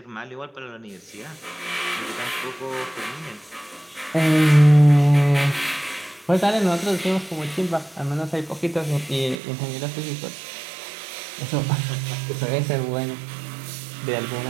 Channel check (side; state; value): left; drops out; at 9.4 s